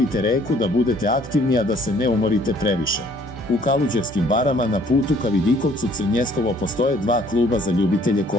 reku, da budete aktivni, a da se ne umorite previše. U Kaluđerskim barama na putu ka Vidikovcu Crnjeskovo postoje 2 kluba za ljubitelje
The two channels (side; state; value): both; normal; correlation 0.59